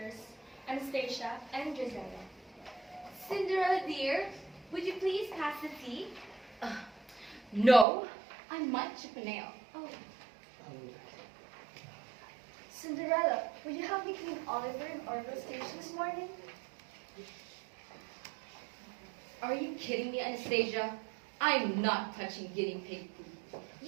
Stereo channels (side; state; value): left; drops out; at 7.9 s